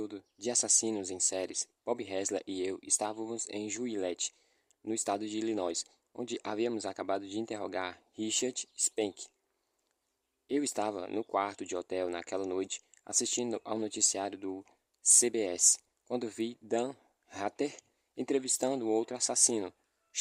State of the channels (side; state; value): both; identical; correlation 1.00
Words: de assassinos em séries, Bob Hessler e eu estávamos em Juliette, no estado de Illinois, onde havíamos acabado de interrogar Richard Spank. Eu estava no quarto de hotel naquela noite, assistindo ao noticiário do CBS, quando vi Dan Rather entrevistando outro assassino,